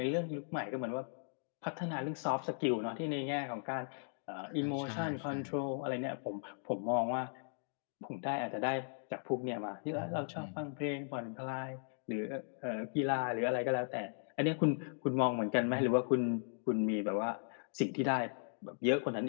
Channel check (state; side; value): silent; right; digital silence